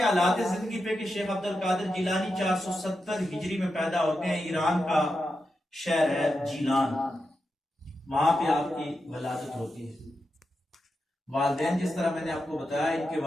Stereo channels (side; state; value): both; normal; correlation 0.88